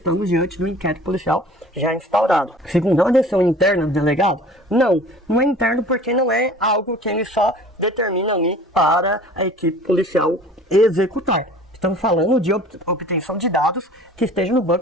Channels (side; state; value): both; normal; correlation 0.46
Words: diante do inquérito policial já instaurado. Segundo, é uma decisão interna do delegado? Não é interno porque não é algo que ele só determina ali para a equipe policial executar. Estamos falando de obtenção de dados que estejam no